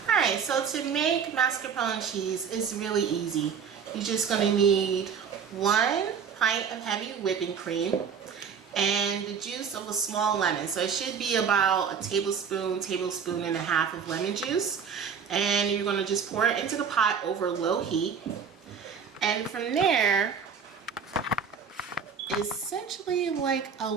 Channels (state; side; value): quieter; left; 6.7 dB